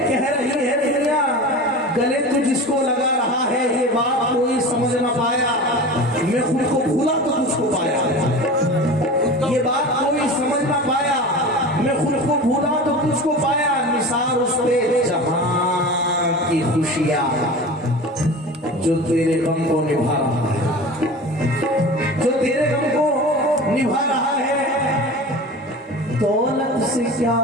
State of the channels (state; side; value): normal; both; correlation 0.33